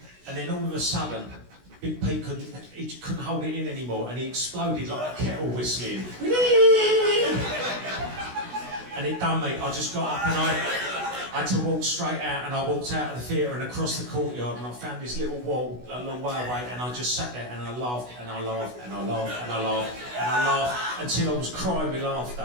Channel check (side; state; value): left; late; 16 ms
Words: And then all of a sudden, Big Pete couldn't hold it in anymore, and he exploded like a kettle whistling. And it done me. I just got up and I had to walk straight out, and I walked out of the theatre and across the courtyard, and I found this little wall a long way away, and I just sat there and I laughed and I laughed and I laughed and I laughed and I laughed until I was crying with